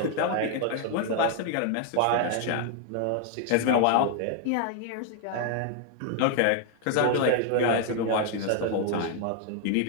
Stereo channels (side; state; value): both; different; correlation 0.00